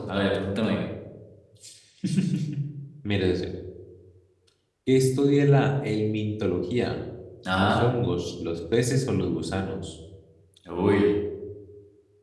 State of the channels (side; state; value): both; identical; correlation 1.00